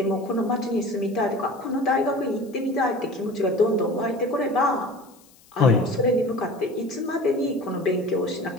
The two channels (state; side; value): noise; left; hiss, 28 dB below the sound